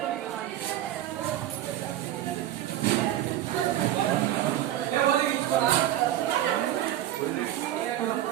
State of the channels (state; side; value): quieter; left; 12.7 dB